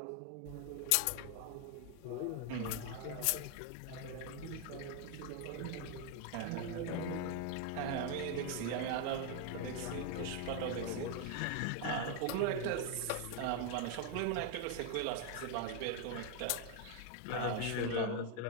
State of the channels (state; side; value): different; both; correlation 0.01